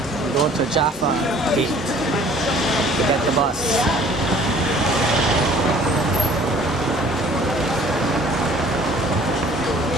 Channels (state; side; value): normal; both; correlation 0.53